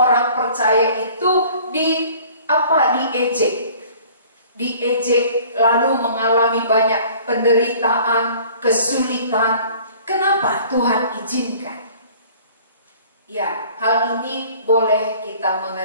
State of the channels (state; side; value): inverted; both; correlation -0.50